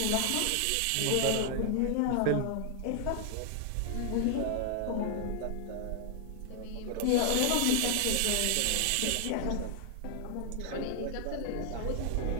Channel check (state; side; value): different; both; correlation 0.00